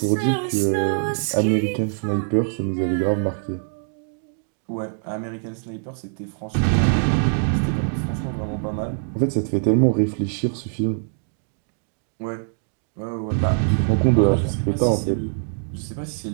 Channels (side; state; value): left; silent; digital silence